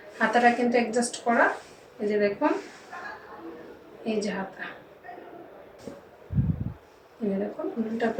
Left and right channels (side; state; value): both; identical; correlation 1.00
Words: হাতাটা কিন্তু অ্যাডজাস্ট করা। এই যে দেখুন, এই যে হাতা, দেখুন উলটা